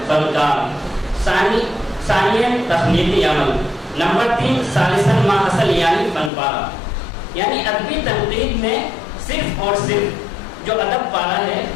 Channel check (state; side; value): drops out; right; at 6.3 s